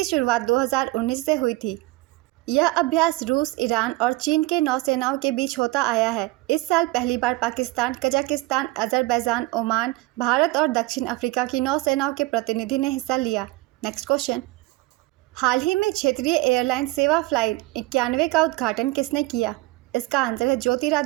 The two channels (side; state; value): left; quieter; 20.1 dB